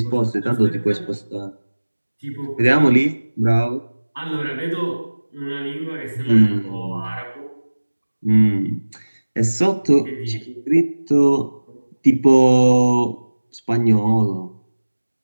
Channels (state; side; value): inverted; both; correlation -1.00